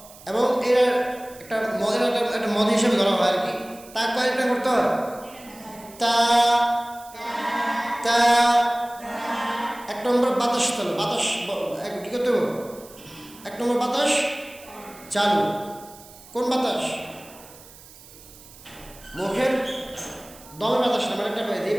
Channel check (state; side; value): noise; right; hiss, 21 dB below the sound